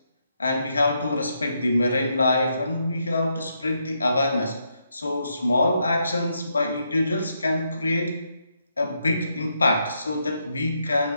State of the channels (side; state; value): both; inverted; correlation -0.79